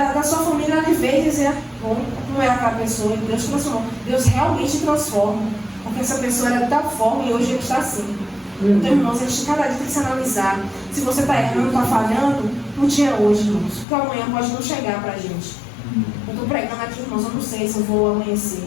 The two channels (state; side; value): drops out; right; at 13.9 s